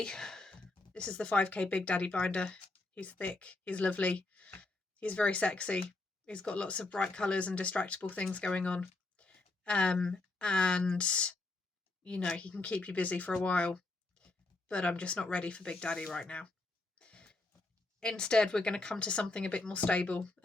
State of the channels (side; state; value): right; quieter; 3.1 dB